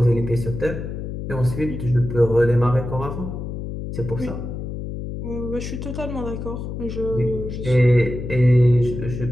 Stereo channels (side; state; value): left; noise; hum, 6 dB below the sound